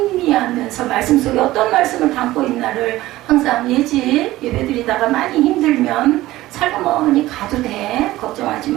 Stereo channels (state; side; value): quieter; left; 16.7 dB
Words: 말씀 속에 어떤 말씀을 담고 있나를 항상 예배드리다가 많이 힘들면 살그머니 가도 돼. 걱정하지